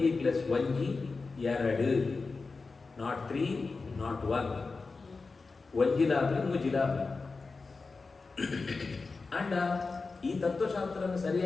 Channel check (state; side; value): quieter; right; 4.1 dB